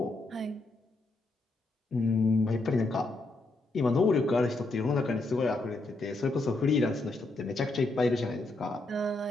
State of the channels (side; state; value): right; quieter; 3.0 dB